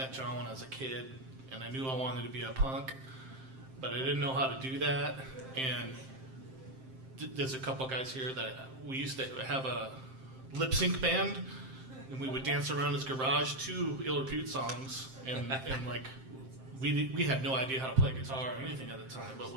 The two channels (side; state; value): left; late; 7.6 ms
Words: John when I was a kid, and I knew I wanted to be a punk, but I didn't know how to do that. And there's a couple guys here that we used to have a lip sync band, and we would dance around his garage to Ill Repute songs, and like we had no idea how to play guitar or anything at the time, but